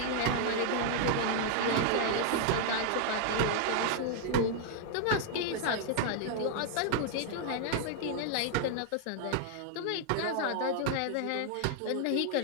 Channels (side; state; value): both; different; correlation 0.00